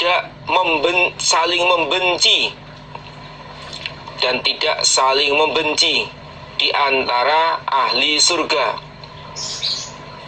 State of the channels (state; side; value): identical; both; correlation 1.00